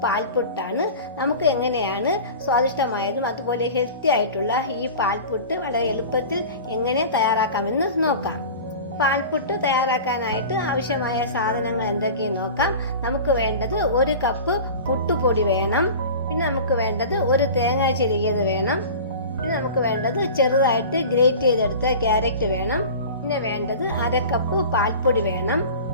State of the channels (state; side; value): inverted; both; correlation -0.36